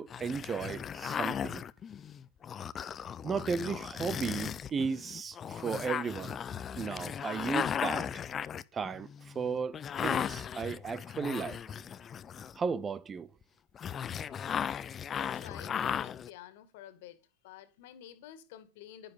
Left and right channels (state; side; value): normal; both; correlation 0.72